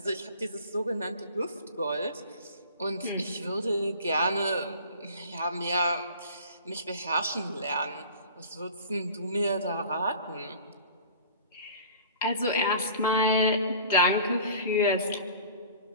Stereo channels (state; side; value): inverted; both; correlation -0.43